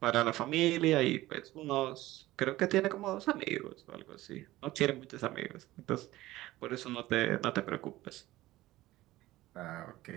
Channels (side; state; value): left; quieter; 16.9 dB